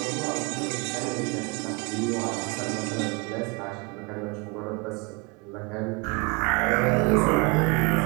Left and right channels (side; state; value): left; quieter; 28.3 dB